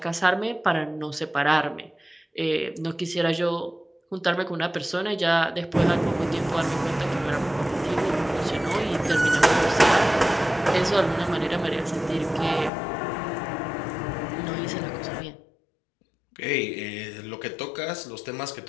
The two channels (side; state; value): right; drops out; at 12.7 s